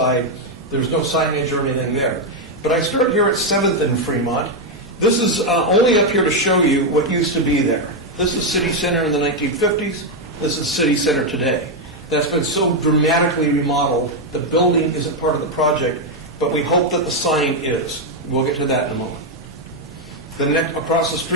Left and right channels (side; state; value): both; normal; correlation 0.02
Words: There's no signage or anything there. But I start here at 7th and Fremont. This is only up here to show you what used to be there. This is City Center in the 1950s. This is City Center today. That's been so dramatically remodeled. The building isn't part of the project, but we hope that the sign is. We'll get to that in a moment. The next across the